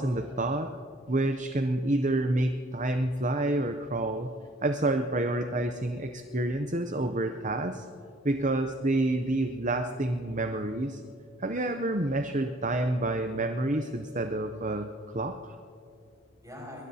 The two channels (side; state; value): both; normal; correlation 0.57